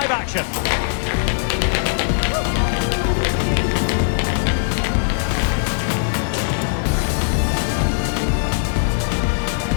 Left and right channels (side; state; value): right; silent; digital silence